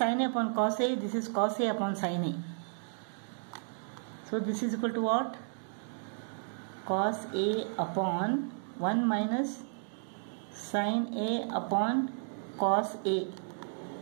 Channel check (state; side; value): silent; left; digital silence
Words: A upon cos A, this is cos A upon sin A. So this is equal to what? Cos A upon 1 minus sin A upon cos A